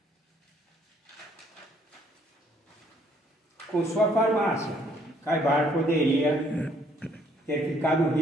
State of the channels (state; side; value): normal; both; correlation 0.65